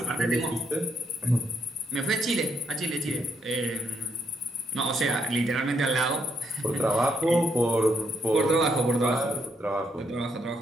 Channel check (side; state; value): both; normal; correlation 0.76